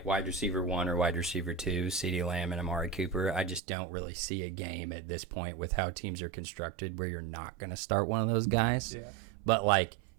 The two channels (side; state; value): left; drops out; at 3.6 s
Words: wide receiver 1 or wide receiver 2, CeeDee Lamb and Amari Cooper. I just don't really see a game at this point with how teams are constructed where you're not going to start one of those guys. Yeah. But like